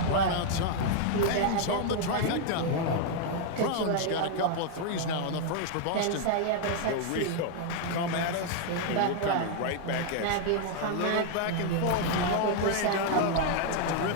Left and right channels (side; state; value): both; different; correlation 0.00